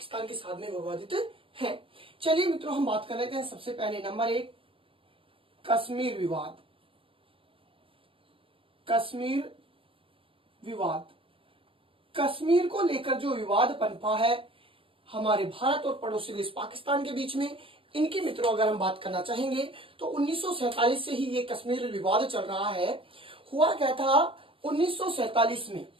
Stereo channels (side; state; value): left; late; 0.26 ms